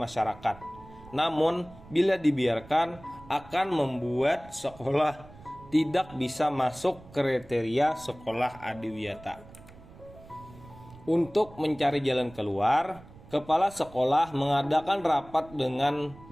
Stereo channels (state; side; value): noise; right; rumble, 20 dB below the sound